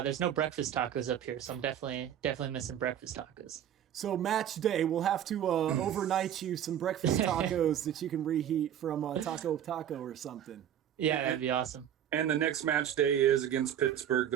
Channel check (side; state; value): left; quieter; 10.1 dB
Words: there's no breakfast tacos up here, so I'm definitely missing breakfast tacos. So match day, we'll have to overnight you some breakfast tacos that you can reheat from Taco or something. Yeah, that'd be awesome. And the next match day is against Pittsburgh,